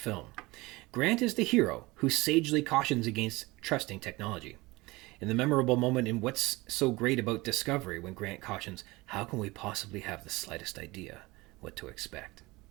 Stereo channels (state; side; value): quieter; left; 21.9 dB